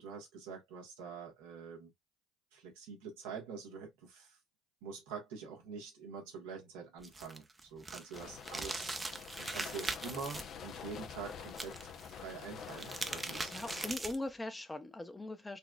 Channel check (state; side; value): normal; both; correlation 0.69